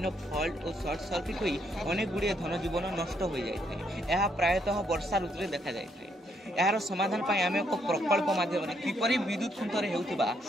फॉल्ट और शॉर्ट सर्किट होई अनेक गुड़िया धन जीवन नष्ट हो जाए। यह प्रायतः वर्षा ऋतु में देखा जाए। यार समाधान पाई आम एक प्रकल्प माध्यम किपरि विद्युत खुंटरे हेउथिबा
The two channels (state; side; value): normal; both; correlation 0.74